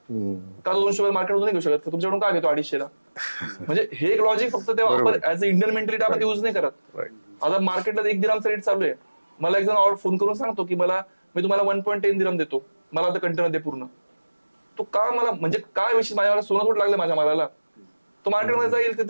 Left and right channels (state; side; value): inverted; both; correlation -1.00